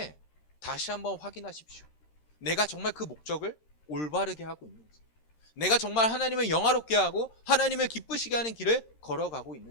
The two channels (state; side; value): late; right; 13 ms